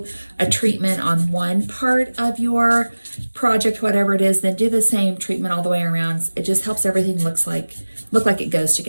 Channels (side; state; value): both; inverted; correlation -1.00